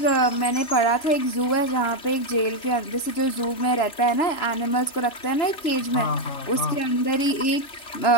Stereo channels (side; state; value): right; late; 3.3 ms